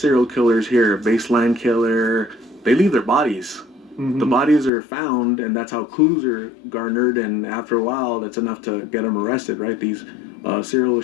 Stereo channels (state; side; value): drops out; right; at 4.7 s